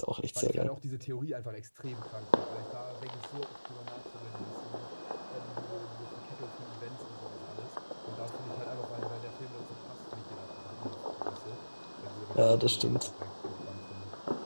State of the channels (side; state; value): both; inverted; correlation -1.00